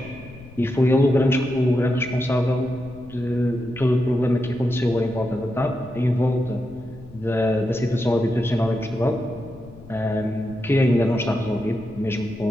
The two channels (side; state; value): left; noise; rumble, 19 dB below the sound